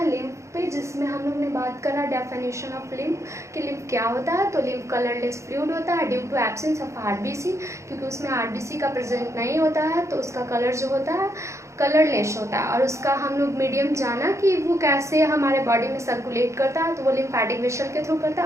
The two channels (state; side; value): late; left; 0.14 ms